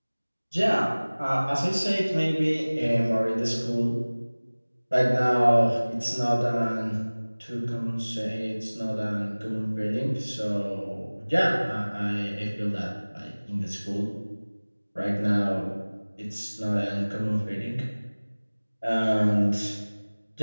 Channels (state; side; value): inverted; both; correlation -1.00